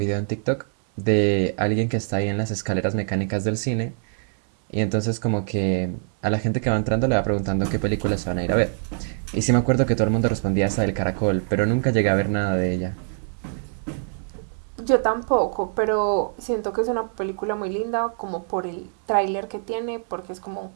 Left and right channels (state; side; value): silent; left; 63 dB below the other